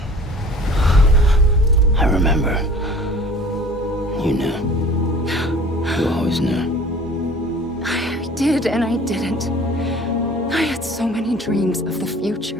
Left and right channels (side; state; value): both; normal; correlation 0.46